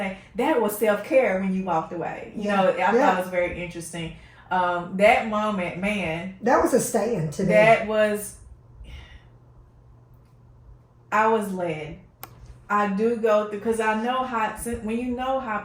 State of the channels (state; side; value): identical; both; correlation 1.00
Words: that was self-care when you walked away. I thought it was very interesting. That moment, man. That was a stand to me. That was, I was led. I do go through, because I know when you know how